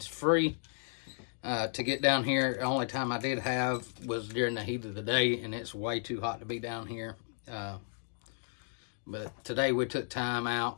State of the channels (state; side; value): silent; right; 55 dB below the other